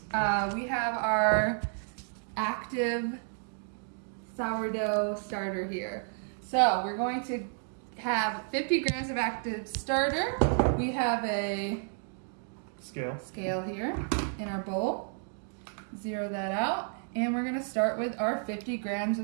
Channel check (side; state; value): left; silent; 57 dB below the other